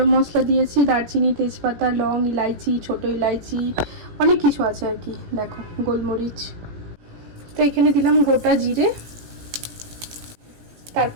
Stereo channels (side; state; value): left; late; 17 ms